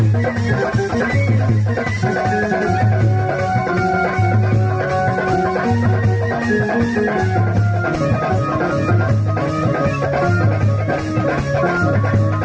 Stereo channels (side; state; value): both; identical; correlation 1.00